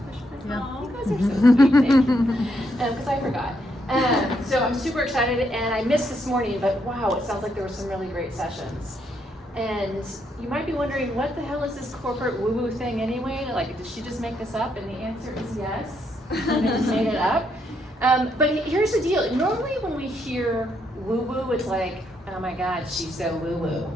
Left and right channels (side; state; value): both; normal; correlation 0.76